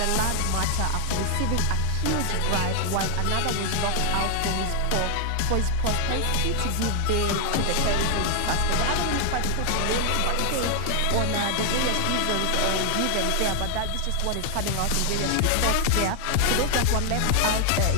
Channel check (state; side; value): different; both; correlation 0.00